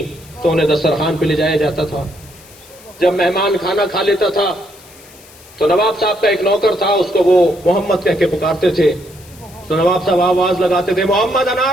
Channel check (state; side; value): noise; left; hiss, 23 dB below the sound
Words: تو انہیں دسترخوان پہ لے جایا جاتا تھا۔ جب مہمان کھانا کھا لیتا تھا تو نواب صاحب کا ایک نوکر تھا، اس کو وہ محمد کہہ کے پکارتے تھے، تو نواب صاحب آواز لگاتے تھے محمد